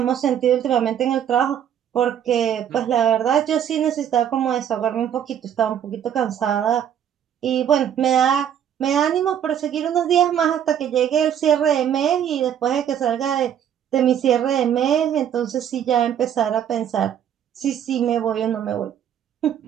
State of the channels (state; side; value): quieter; left; 9.4 dB